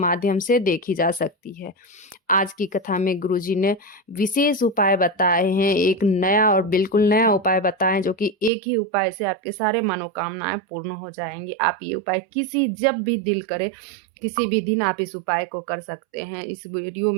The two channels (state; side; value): drops out; left; at 8.5 s